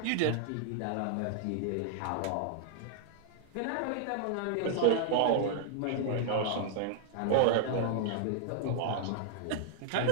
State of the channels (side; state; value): both; different; correlation -0.01